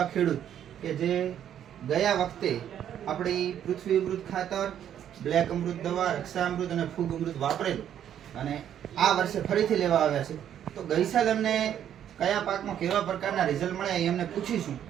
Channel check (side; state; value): left; quieter; 10.0 dB